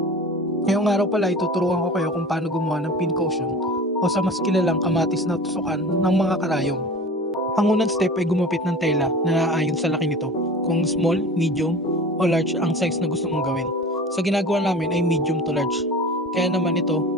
Ngayong araw pala ituturuan ko kayo kung paano gumawa ng pincushion o sa mas kilalang kamatis na tusukan ng mga karayom. Ang unang step ay gumupit ng tela na naayon sa laki nito, kung small, medium o large ang size na gusto mong gawin. Sa ginagawa namin ay medium to large. Kaya naman ito,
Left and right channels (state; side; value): normal; both; correlation 0.38